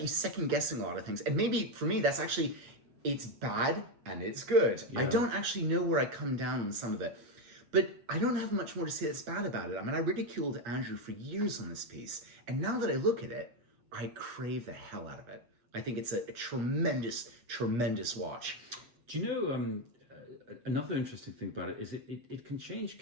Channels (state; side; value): late; left; 8.5 ms